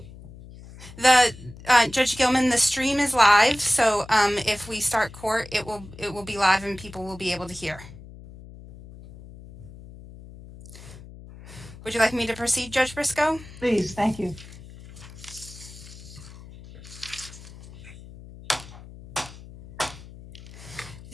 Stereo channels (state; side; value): noise; left; hum, 17 dB below the sound